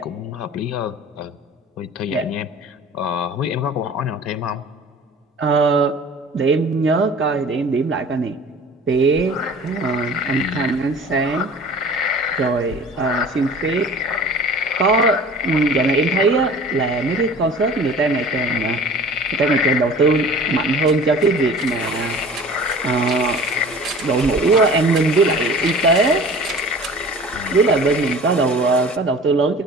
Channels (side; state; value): both; normal; correlation 0.43